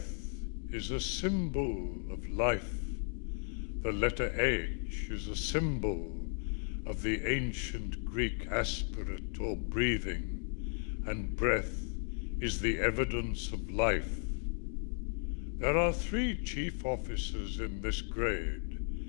is a symbol of life. The letter H is a symbol of the ancient Greek aspirate or breathing, and breath is the evidence of life. There are 3 chief officers in this grade,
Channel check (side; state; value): right; silent; 54 dB below the other